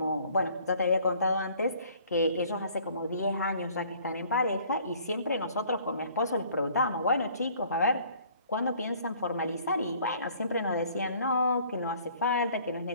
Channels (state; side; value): inverted; both; correlation -0.56